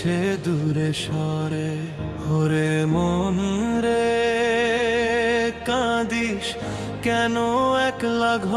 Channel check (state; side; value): identical; both; correlation 1.00